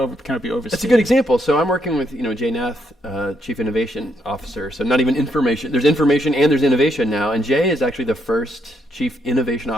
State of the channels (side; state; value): both; normal; correlation 0.76